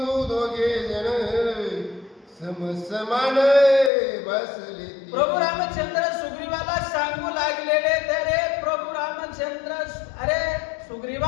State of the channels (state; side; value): drops out; right; at 3.9 s